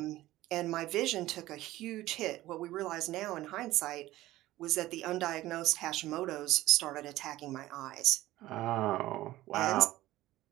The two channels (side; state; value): left; quieter; 16.2 dB